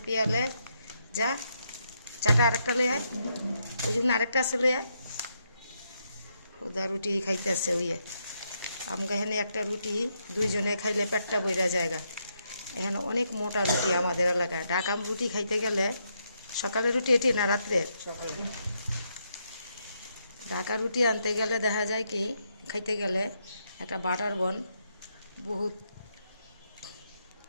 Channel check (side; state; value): both; inverted; correlation -0.79